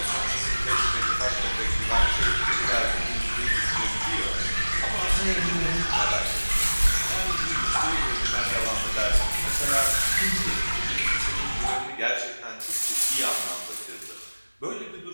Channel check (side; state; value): both; inverted; correlation -1.00